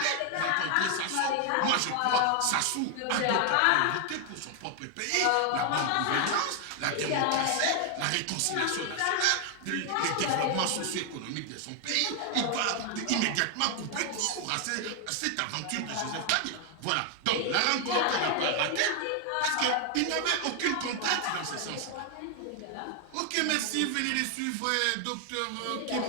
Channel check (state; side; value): different; both; correlation 0.00